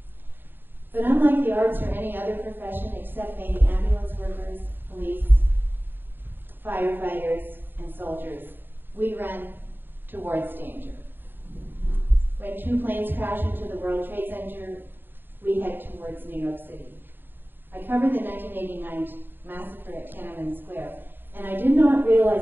But unlike the arts or any other profession except maybe ambulance workers, police, firefighters, and soldiers, we run towards danger. When 2 planes crash into the World Trade Center, we head towards New York City. I covered the 1989 massacre at Tiananmen Square, and I did not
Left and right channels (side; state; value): left; late; 0.095 ms